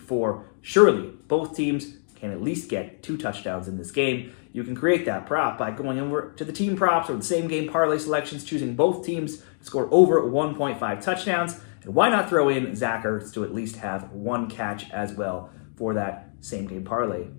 Surely, both teams can at least get 2 touchdowns in this game. You can create that prop by going over to the team props or the same game parlay selections, choosing both teams to score over 1.5 touchdowns. And why not throw in Zach Ertz to at least have 1 catch as well for that same game parlay,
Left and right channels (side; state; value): right; silent; 61 dB below the other